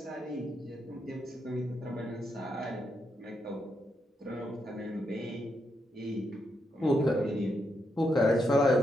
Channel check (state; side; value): normal; both; correlation 0.81